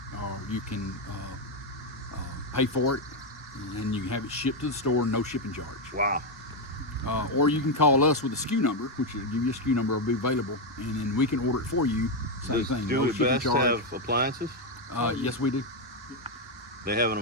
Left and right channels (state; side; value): normal; both; correlation 0.04